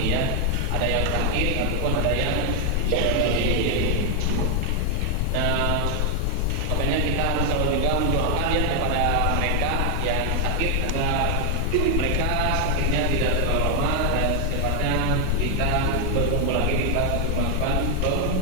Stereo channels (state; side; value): different; both; correlation 0.00